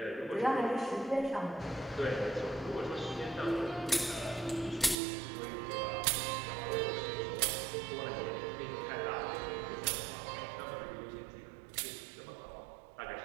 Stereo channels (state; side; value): drops out; left; at 5.0 s